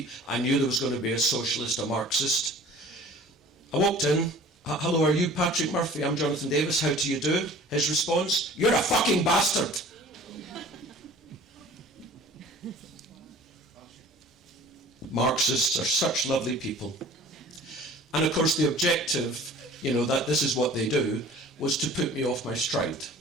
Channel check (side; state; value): both; normal; correlation 0.46